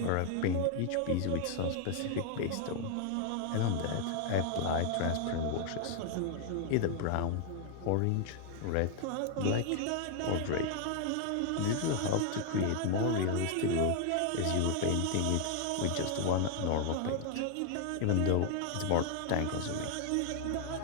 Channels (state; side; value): different; both; correlation 0.00